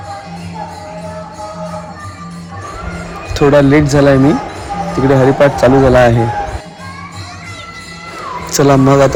थोडा लेट झाला आहे, मी तिकडे हरिपाठ चालू झाला आहे. चला मग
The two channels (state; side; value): identical; both; correlation 1.00